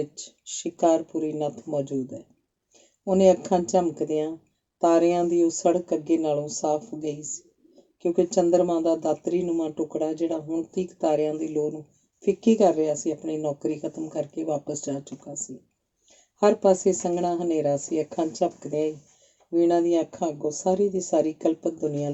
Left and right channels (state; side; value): identical; both; correlation 1.00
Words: ਸ਼ਿਕਾਰਪੁਰੀ ਨੱਥ ਮੌਜੂਦ ਹੈ। ਉਹਨੇ ਅੱਖਾਂ ਝਮਕਦਿਆਂ ਤਾਰਿਆਂ ਦੀ ਉਹ ਸੜਕ ਅੱਗੇ ਨਾਲੋਂ ਸਾਫ਼ ਗਈ ਸੀ, ਕਿਉਂਕਿ ਚੰਦਰਮਾ ਦਾ ਦਾਤਰੀ-ਨੁਮਾ ਟੁਕੜਾ, ਜਿਹੜਾ ਹੁਣ ਤੀਕ ਤਾਰਿਆਂ ਦੀ ਲੋ ਨੂੰ ਫਿੱਕੀ ਕਰ ਰਿਹਾ ਸੀ, ਆਪਣੀ ਨੌਕਰੀ ਖਤਮ ਕਰਕੇ ਵਾਪਸ ਜਾ ਚੁੱਕਾ ਸੀ। ਹਰ ਪਾਸੇ ਸੰਘਣਾ ਹਨੇਰਾ ਸੀ। ਅੱਖਾਂ ਝਪਕਦਿਆਂ ਹੀ ਵੀਣਾ ਦੀਆਂ ਅੱਖਾਂ ਅੱਗੋਂ ਸਾਰੀ ਦੀ ਸਾਰੀ ਕਲਪਤ ਦੁਨੀਆ